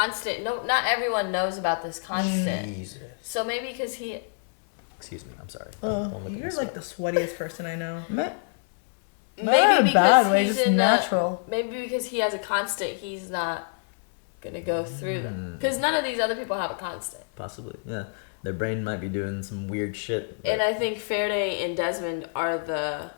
not everyone knows about this constant. Jesus. So maybe because he. Excuse me. I'm sorry. Don't look at You're me so. like the sweatiest person I know. Not in Maybe a because bad way, he's just in natural. maybe because he has a constant, he's not gonna go through them. Mm. Because none of these other people have a constant. Possibly. Yeah. Their brain might be doing some weird shit. And I think Faraday and Desmond are the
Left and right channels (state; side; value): silent; right; digital silence